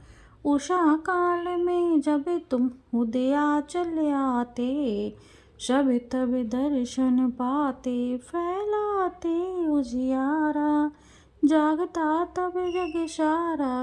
उषा काल में जब तुम उदयाचल आते, सब तब दर्शन पाते, फैलाते उजियारा, जागता तब जग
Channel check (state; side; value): identical; both; correlation 1.00